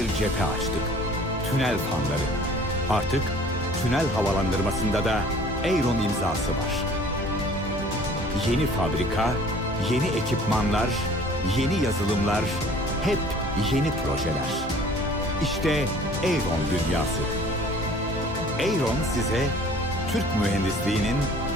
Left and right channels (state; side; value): normal; both; correlation 0.51